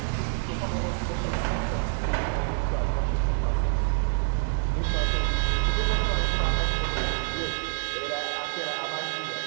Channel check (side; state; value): left; silent; digital silence